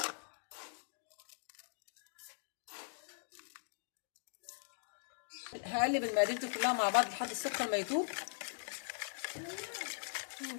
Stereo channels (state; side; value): silent; right; digital silence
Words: هقلب المقادير دي كلها مع بعض لحد السكر ما يدوب.